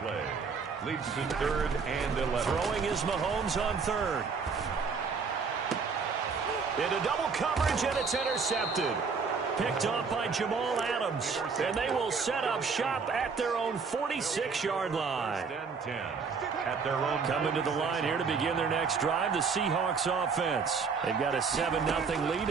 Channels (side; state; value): left; quieter; 5.3 dB